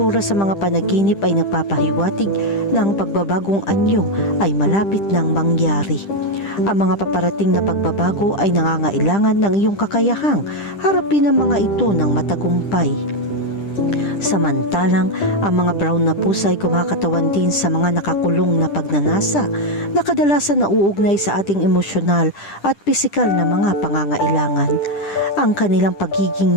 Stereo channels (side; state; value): right; late; 10 ms